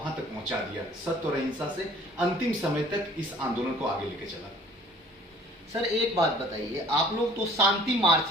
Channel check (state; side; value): normal; both; correlation 0.52